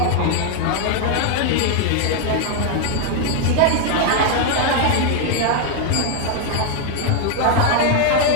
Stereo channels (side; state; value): both; different; correlation 0.00